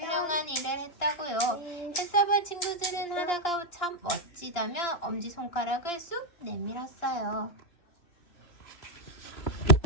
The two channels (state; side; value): late; right; 2.9 ms